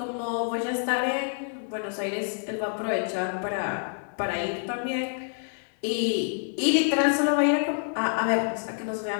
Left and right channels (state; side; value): silent; right; 60 dB below the other